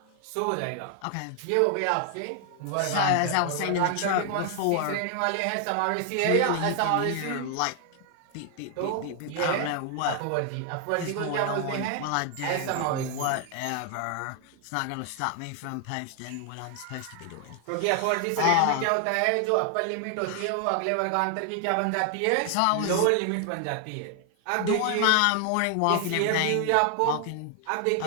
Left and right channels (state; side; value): different; both; correlation 0.00